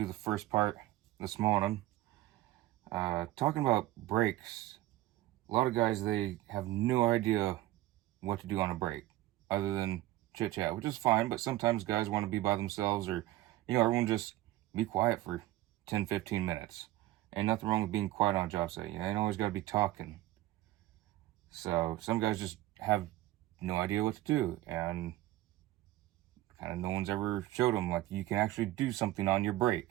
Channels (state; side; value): quieter; left; 16.1 dB